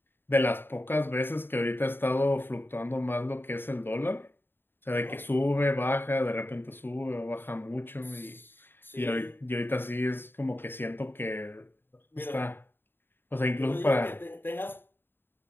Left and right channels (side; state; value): right; late; 0.10 ms